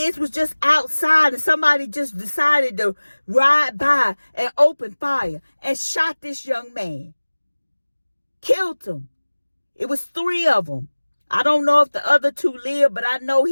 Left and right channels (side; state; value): both; inverted; correlation -1.00